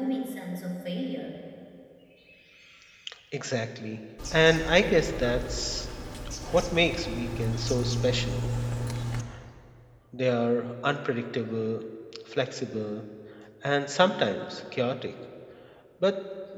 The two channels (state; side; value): identical; both; correlation 1.00